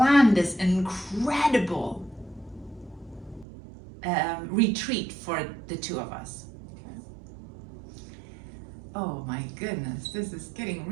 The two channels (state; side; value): drops out; left; at 3.5 s